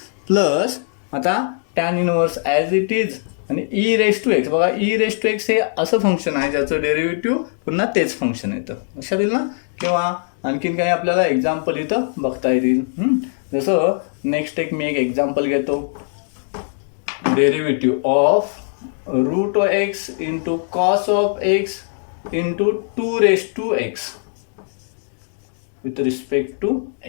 प्लस आता tan inverse as it is आणि ई रेस टू एक्स. बघा ई रेस टू एक्स हे असं फंक्शन आहे ज्याचं डेरिव्हेटिव्ह पुन्हा तेच फंक्शन येतं लक्षात येईल ना. किंवा आणखीन काही आपल्याला एक्झाम्पल इथं बघता येतील. जसं नेक्स्ट मी एक एक्झाम्पल घेतो derivative of root x into cos of x into 2 with respect to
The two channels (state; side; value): silent; right; digital silence